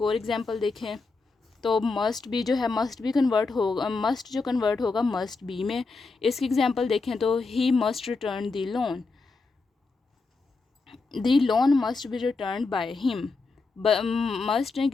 और एग्जांपल देखें तो मस्ट बी जो है, मस्ट बी कन्वर्ट होगा, मस्ट जो कन्वर्ट होगा मस्ट बी में। इसकी एग्जांपल देखें तो he must return the loan, the loan must be return by him. Must ने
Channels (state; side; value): quieter; right; 4.0 dB